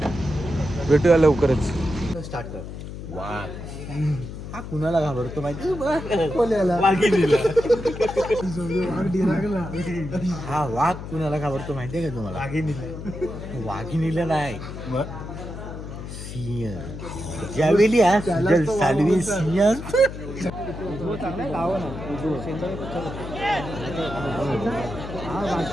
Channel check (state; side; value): noise; left; hum, 9 dB below the sound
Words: भेटूया लवकरच. स्टार्ट कर. वाघ हा कुणाला घाबरतो माहिती हा वाघ कुणाला घाबरतो माहितीये का तुम्हाला? वाघिणीला नाही, सिंह. ज्यावेळी हा सुजल सालवी सिंह